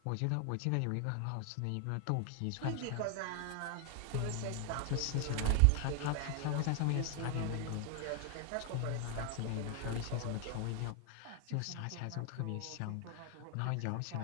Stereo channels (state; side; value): different; both; correlation 0.00